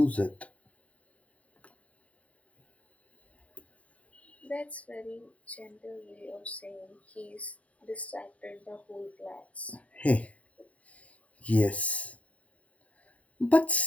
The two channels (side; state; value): right; late; 0.067 ms